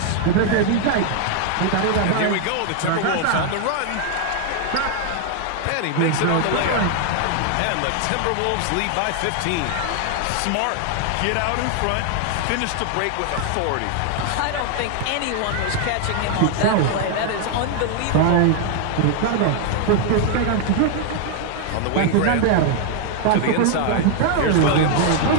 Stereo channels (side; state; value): both; different; correlation 0.00